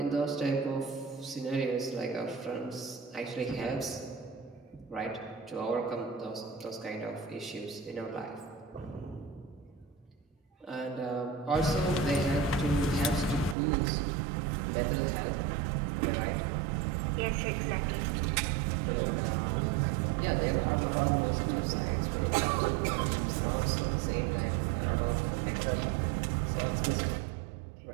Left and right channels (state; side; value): drops out; left; at 13.6 s